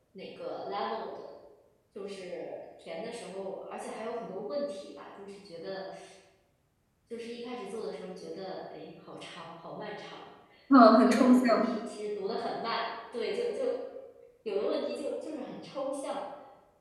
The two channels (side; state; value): both; identical; correlation 1.00